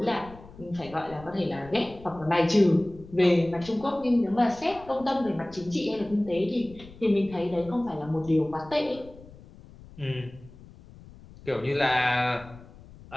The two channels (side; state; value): left; noise; rumble, 20 dB below the sound